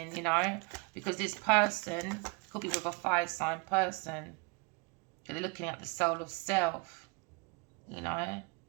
you know, because this person could be with a fire sign person. They're looking at the soul of self, you know,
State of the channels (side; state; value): left; quieter; 30.7 dB